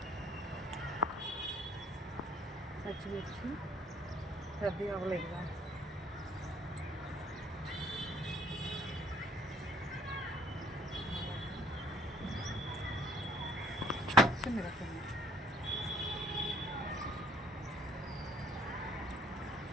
పచ్చిమిర్చి పెద్దవి అవ్వలేదుగా. పచ్చిమిరపకాయ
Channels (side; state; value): both; normal; correlation 0.60